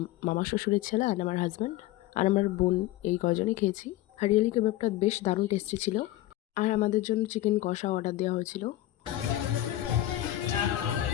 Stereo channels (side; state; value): right; quieter; 15.0 dB